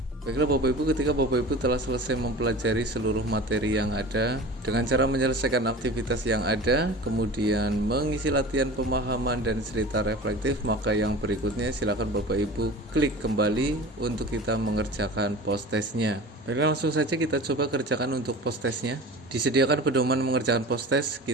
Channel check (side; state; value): both; normal; correlation 0.37